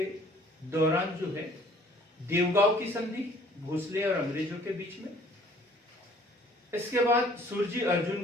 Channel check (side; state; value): both; normal; correlation 0.56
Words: दौरान जो है देवगांव की संधि भोसले और अंग्रेजों के बीच में, इसके बाद सुरजी अर्जुन